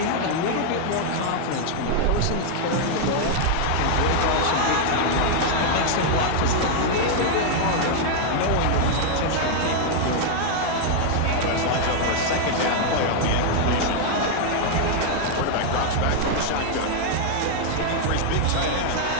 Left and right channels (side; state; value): both; different; correlation 0.00